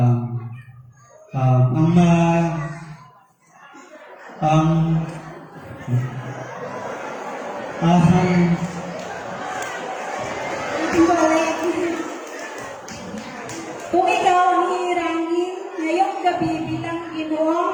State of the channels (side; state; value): both; identical; correlation 1.00